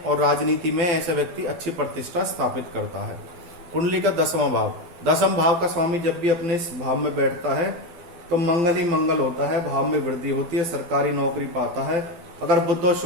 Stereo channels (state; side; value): late; left; 12 ms